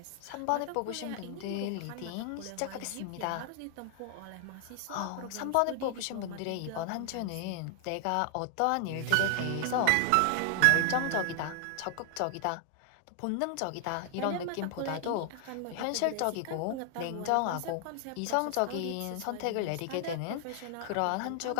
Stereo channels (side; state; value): both; different; correlation 0.00